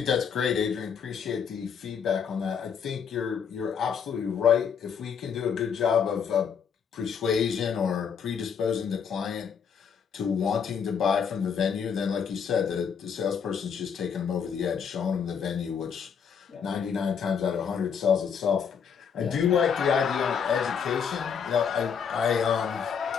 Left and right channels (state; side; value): quieter; right; 7.0 dB